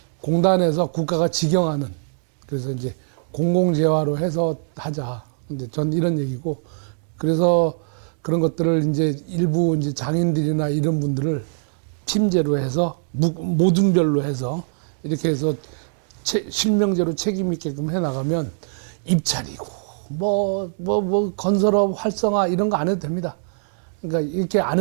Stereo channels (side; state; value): left; silent; digital silence